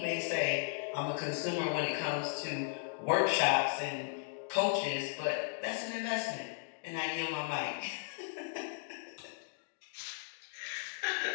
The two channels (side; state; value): right; silent; digital silence